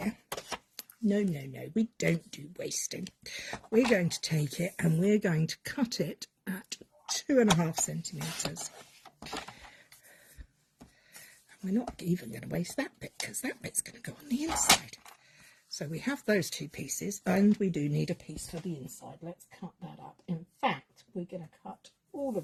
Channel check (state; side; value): identical; both; correlation 1.00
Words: No, we don't do wasting. We're going to take it and we're going to cut it at 2.5 centimetres. And we're not even going to waste that bit because that bit's going to go on the inside. So we have those two pieces, and we do need a piece for the inside. Let's cut that up. In fact, we're going to cut all